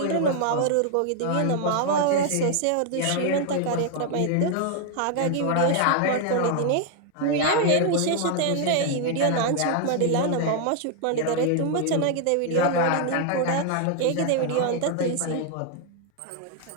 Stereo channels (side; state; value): both; different; correlation 0.00